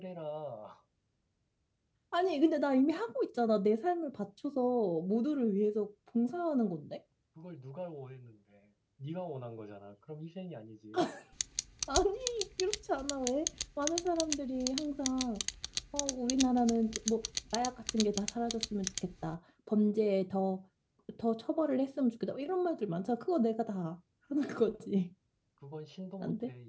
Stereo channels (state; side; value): identical; both; correlation 1.00